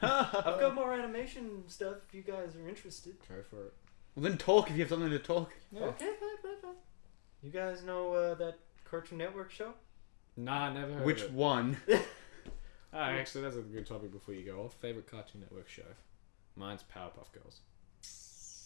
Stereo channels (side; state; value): right; silent; digital silence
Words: I've got more animation stuff if you guys are interested. Go for it. Well, then talk if you have something to talk. Yeah. Okay, fine. You guys know that Cartoon Network show? Nah, never heard Which of it. one? Oh, actually, that's a good topic before you go off. Favorite Cartoon Network show? Mine's Powerpuff Girls.